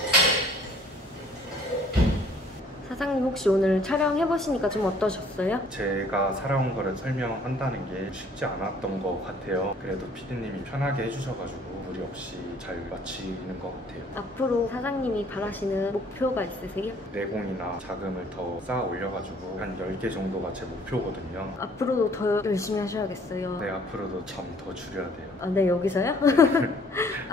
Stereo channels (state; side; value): normal; both; correlation 0.58